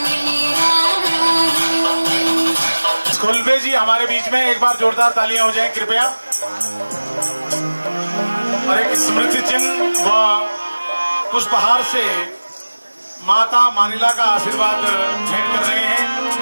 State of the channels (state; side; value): inverted; both; correlation -1.00